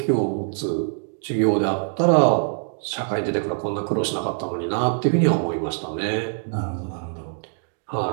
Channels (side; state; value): left; silent; digital silence